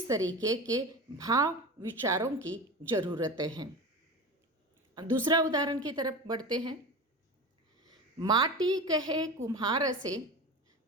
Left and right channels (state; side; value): normal; both; correlation 0.28